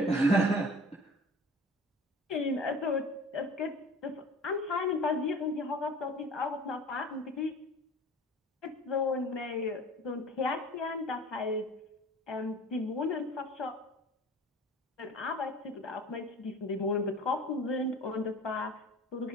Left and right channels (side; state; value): both; normal; correlation 0.42